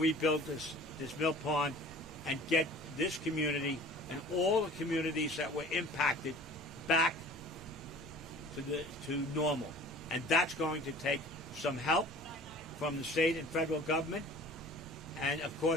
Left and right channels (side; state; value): both; normal; correlation 0.45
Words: this mill pond and get this community and all the communities that were impacted back to normal. And that's going to take some help from the state and federal government. And of